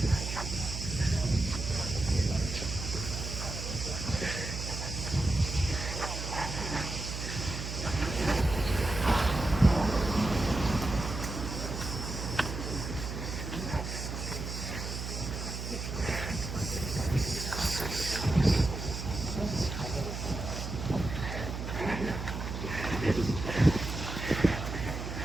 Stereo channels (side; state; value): right; noise; hum, 5 dB below the sound